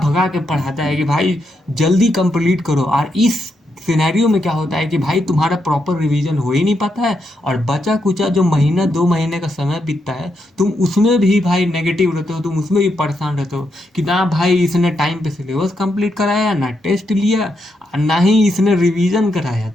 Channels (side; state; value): both; normal; correlation 0.81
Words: के पढ़ाता है कि भाई जल्दी कंप्लीट करो। और इस सिनेरियो में क्या होता है कि भाई तुम्हारा प्रॉपर रिवीजन हो ही नहीं पाता है, और बचा कुचा जो 1-2 महीने का समय बीतता है तुम उसमें भी भाई नेगेटिव रहते हो, तुम उसमें भी परेशान रहते हो कि ना भाई इसने टाइम पे सिलेबस कंप्लीट कराया, ना टेस्ट लिया, ना ही इसने रिवीजन कराया,